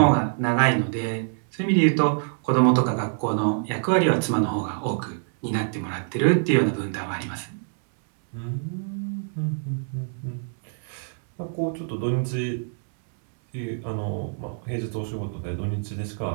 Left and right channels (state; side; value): silent; left; 62 dB below the other